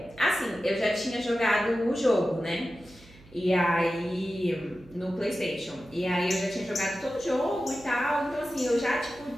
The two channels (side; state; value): right; noise; hum, 24 dB below the sound